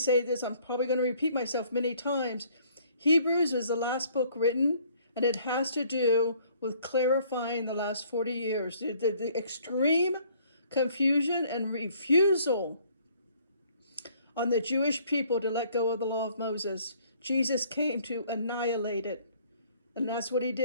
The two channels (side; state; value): both; inverted; correlation -0.60